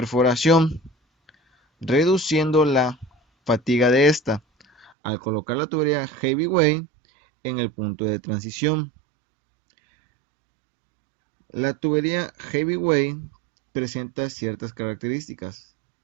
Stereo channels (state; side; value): drops out; left; at 5.0 s